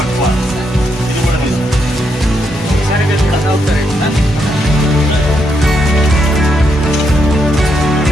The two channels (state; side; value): normal; both; correlation 0.79